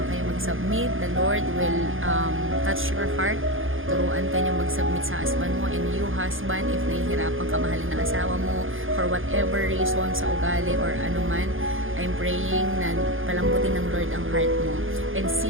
kayo mag-submit, the Lord will touch your heart. Turuan ka niyo mag-submit sa husband mo, and you husband, if nahihirapan ka mahalin ng asawa mo for whatever reason, sa ugali or anuman, I'm praying na palambutin ng Lord ang heart mo and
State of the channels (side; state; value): left; late; 0.59 ms